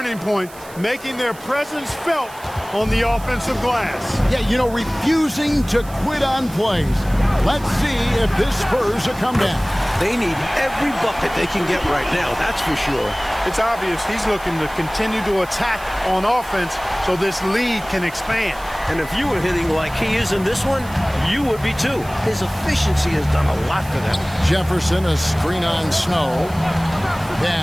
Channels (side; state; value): right; noise; hiss, 20 dB below the sound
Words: point, making their presence felt on the offensive glass. Yeah, you know, refusing to quit on plays. Let's see if this spurs a comeback. They need every bucket they can get right now, that's for sure. It's obvious he's looking to continue to attack on offense so this lead can expand. And if you were hitting like he is in this one, you would be too. His efficiency has done a lot for them. Jefferson, a screen on Snow.